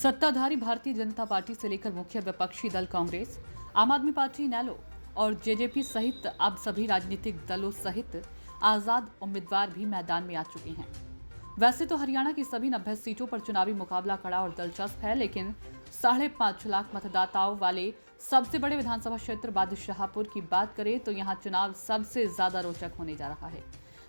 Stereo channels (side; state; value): both; inverted; correlation -1.00